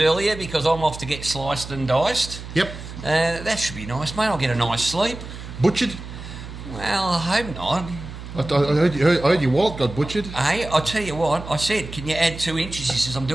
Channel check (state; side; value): noise; right; hum, 11 dB below the sound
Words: because I'm off to get sliced and diced. Yep. That should be nice, mate. I'll get a nice sleep. Butchered? Well, I hope not. I heard your wallet got butchered. Hey, I'll tell you what, I said, can you add 2 inches? He says, I'm